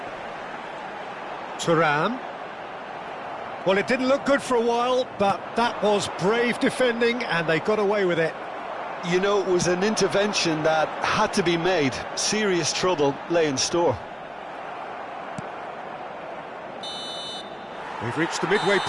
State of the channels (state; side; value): identical; both; correlation 1.00